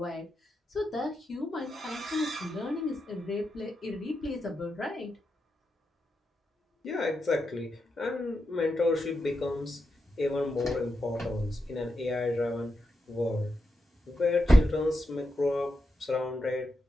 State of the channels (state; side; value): normal; both; correlation 0.86